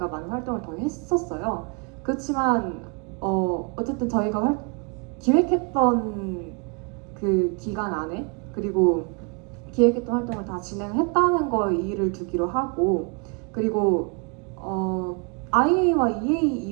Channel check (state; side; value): quieter; left; 33.9 dB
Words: 많은 활동을 더 했었어요. 그렇지만 어쨌든 저희가 기획했던 그 기간 안에 그리고 기획했던 활동을 다 진행했다는 거에 이의를 두기로 하고 그리고 IA와 EA